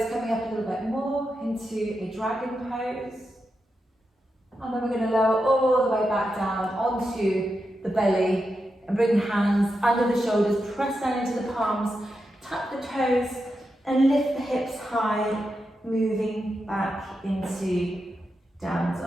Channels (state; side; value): normal; both; correlation 0.87